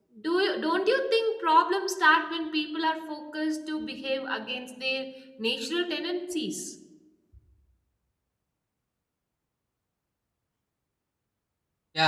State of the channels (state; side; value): identical; both; correlation 1.00